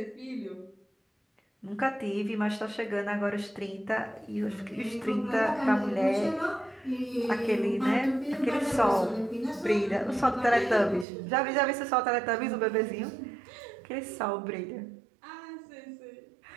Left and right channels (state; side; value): drops out; left; at 11.1 s